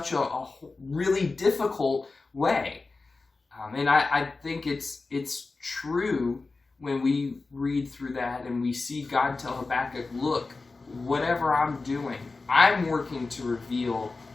a really difficult way? And I think it's true when we read through that and we see God tell Habakkuk, look, whatever I'm doing, I'm working to reveal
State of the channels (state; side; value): quieter; right; 3.8 dB